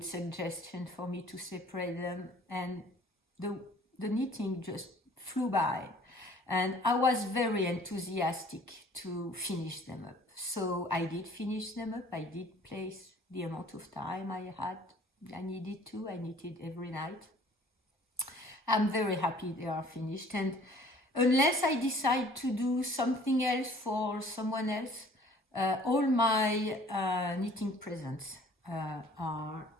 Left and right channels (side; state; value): both; normal; correlation 0.53